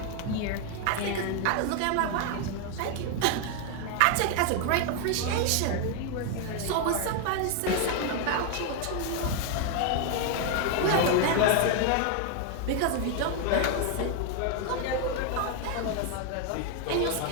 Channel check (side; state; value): both; different; correlation 0.00